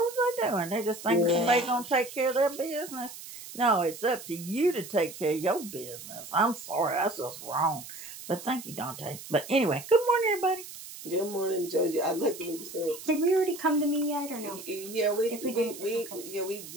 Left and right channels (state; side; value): noise; right; hiss, 13 dB below the sound